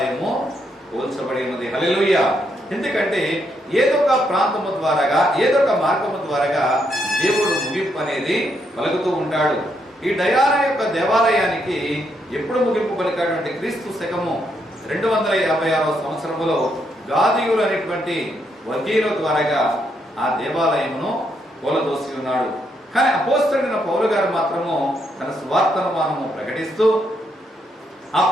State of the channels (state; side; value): normal; both; correlation 0.77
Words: పోల్చబడి ఉన్నది. హల్లెలూయా. ఎందుకంటే ఏదో ఒక ప్రాంతము ద్వారాగా ఏదో ఒక మార్గము ద్వారాగా దేవుడు ముగింపు అనేది పలుకుతూ ఉంటాడు. ఈ డయానా యొక్క దేవాలయానికి ఎప్పుడు ముగింపు పలికాడు అంటే క్రీస్తు శకము 256వ సంవత్సరములో గాదీయులు అనేటువంటి వర్గీయుల ద్వారాగా ఆ దేవాలయమును కూలదోసి ఉన్నాడు. కానీ అపోస్తలుడైన పౌలు గారు మాత్రము తన సువార్తను మనము ప్రకటిస్తూ ఆ